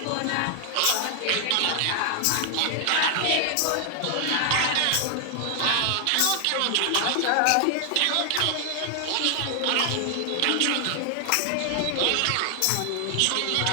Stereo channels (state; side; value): different; both; correlation 0.00